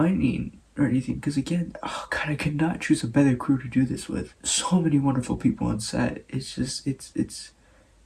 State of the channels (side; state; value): both; identical; correlation 1.00